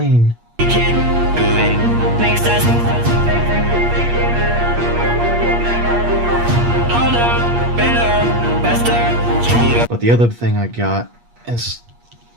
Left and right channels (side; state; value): left; late; 8.5 ms